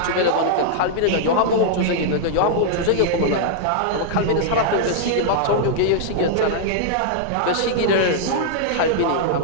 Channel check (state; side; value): different; both; correlation -0.01